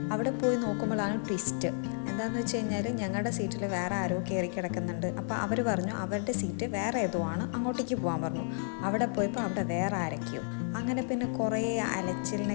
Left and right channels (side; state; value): right; silent; digital silence